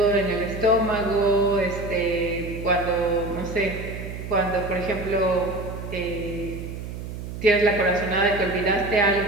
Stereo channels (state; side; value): noise; right; hum, 9 dB below the sound